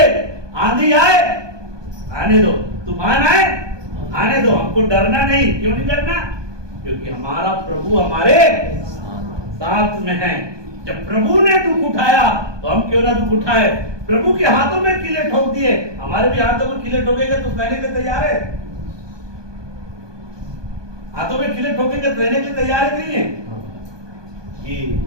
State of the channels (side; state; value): left; late; 1.2 ms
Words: आंधी आए आने दो, तूफान आए आने दो, हमको डरना नहीं। क्यों नहीं डरना, क्योंकि हमारा प्रभु हमारे साथ में है। जब प्रभु ने दुख उठाया तो हम क्यों ना दुख उठाए। प्रभु के हाथों में किले ठोक दिए, हमारे भी हाथों में किले ठोकेंगे तो सहने के लिए तैयार है। हाथों में किले ठोकेंगे तो रहने के लिए तैयार है नहीं है कि